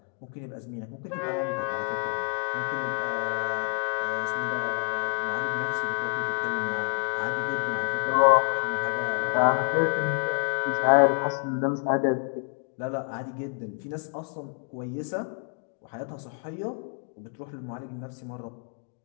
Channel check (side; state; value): right; quieter; 36.3 dB